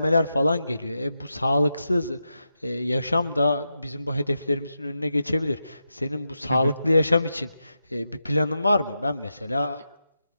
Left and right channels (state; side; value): inverted; both; correlation -0.87